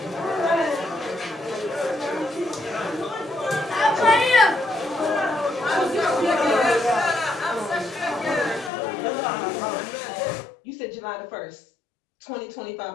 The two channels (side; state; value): right; drops out; at 8.7 s